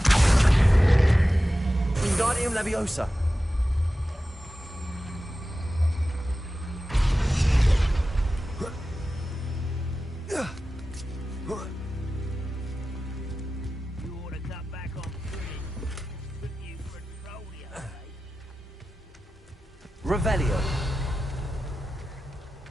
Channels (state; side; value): normal; both; correlation 0.94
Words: Wingardium Leviosa. Revelio.